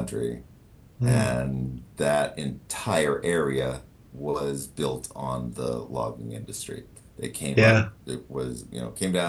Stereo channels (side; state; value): both; identical; correlation 1.00